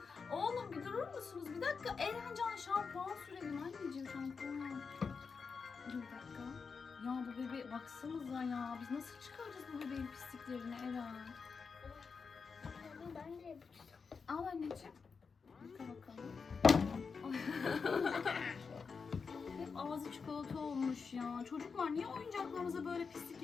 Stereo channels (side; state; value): right; quieter; 5.3 dB